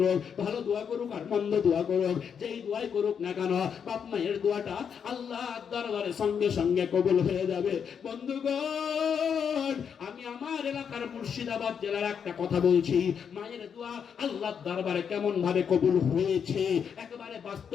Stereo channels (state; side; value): quieter; right; 7.3 dB